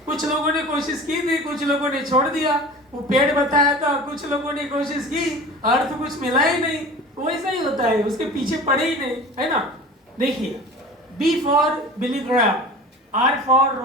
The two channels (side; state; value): both; normal; correlation 0.38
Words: कुछ लोगों ने कोशिश की थी, कुछ लोगों ने छोड़ दिया। वो पेड़ बताया था, कुछ लोगों ने कोशिश की, अर्थ कुछ मिला ही नहीं। वैसा ही होता है, उसके पीछे पड़े ही नहीं, है ना। देखिए, B for Billy Graham, R for